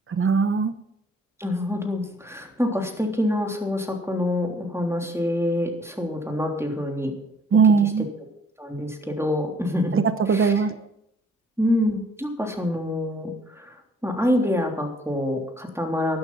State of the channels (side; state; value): both; normal; correlation 0.59